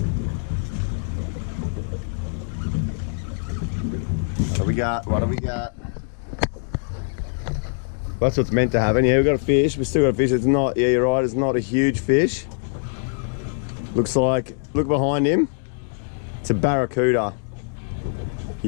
What do we got? That's what's meant to happen. Yeah, we've got a fish. We've still got a fish. It's not, yeah, you're right, it's not a huge fish. Looks like, look behind him. It's a barracuda. Have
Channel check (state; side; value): silent; right; digital silence